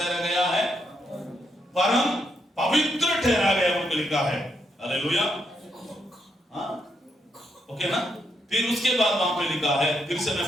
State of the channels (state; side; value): normal; both; correlation 0.79